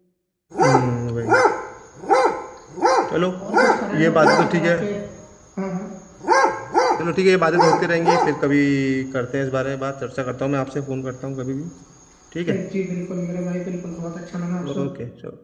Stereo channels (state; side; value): identical; both; correlation 1.00